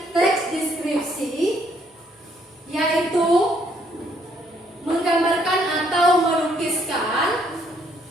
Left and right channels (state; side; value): normal; both; correlation 0.68